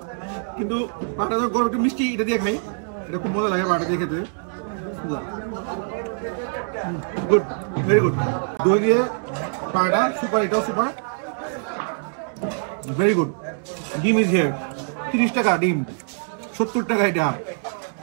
কিন্তু পাটা তো গরম একটু মিষ্টি, এটা দিয়ে খাই, এটা খুব মজা লাগে পাটা দিয়ে খেতে। Good, very good. দই দিয়ে পাটা সুপার, এটাও সুপার, ভেরি গুড। ডিম ইজ হিয়ার, 30 টাকা ডিম, 70 টাকা এটা।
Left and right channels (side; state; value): left; silent; digital silence